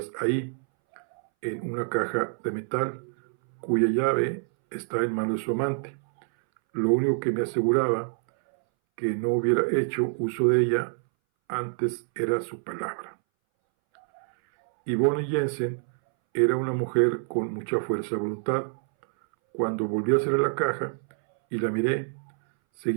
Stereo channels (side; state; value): left; silent; 60 dB below the other